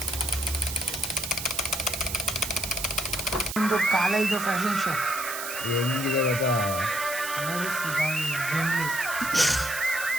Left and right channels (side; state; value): right; noise; hiss, 7 dB below the sound